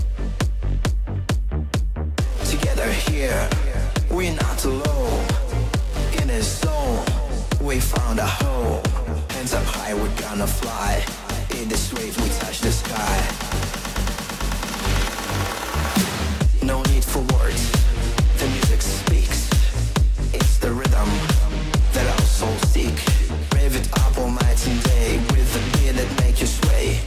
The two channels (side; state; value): both; identical; correlation 1.00